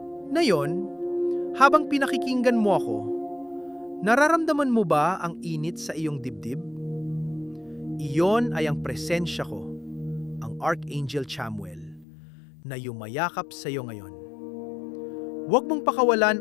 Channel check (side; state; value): right; drops out; at 12.1 s